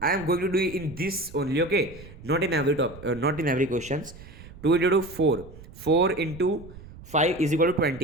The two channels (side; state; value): right; noise; rumble, 17 dB below the sound